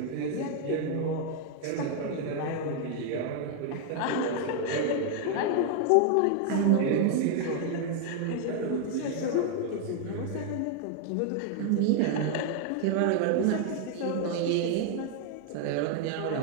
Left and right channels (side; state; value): both; different; correlation 0.00